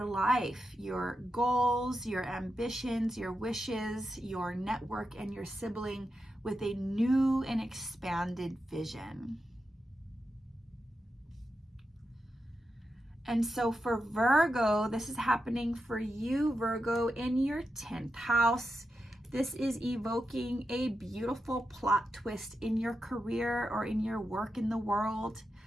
life, your goals, your ambitions, your wishes, your network, and your sibling with a new and expanded vision. And so for Virgo, this is happening for you, Virgo, in your 10th house. This is evoking a beautiful plot twist in your career or in your work in the world.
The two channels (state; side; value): normal; both; correlation 0.88